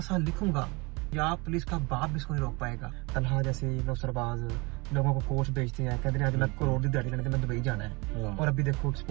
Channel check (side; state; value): left; quieter; 26.8 dB